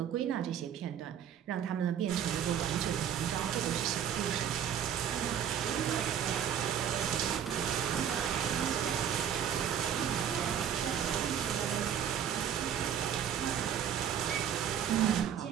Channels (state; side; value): quieter; left; 9.0 dB